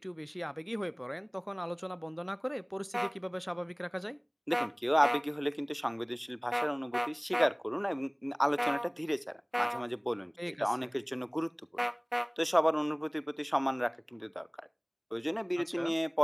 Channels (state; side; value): identical; both; correlation 1.00